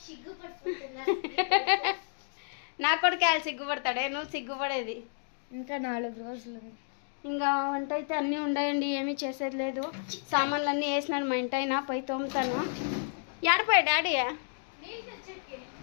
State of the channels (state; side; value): silent; right; digital silence